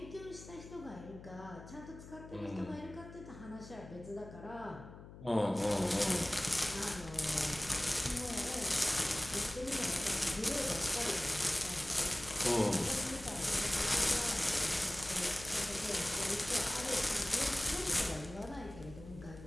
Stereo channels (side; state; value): left; noise; hum, 15 dB below the sound